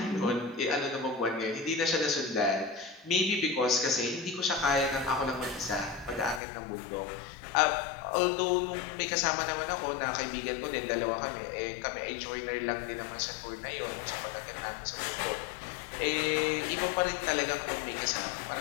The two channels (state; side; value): drops out; right; at 6.4 s